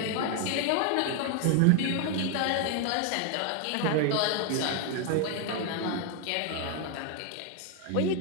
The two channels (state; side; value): different; both; correlation 0.00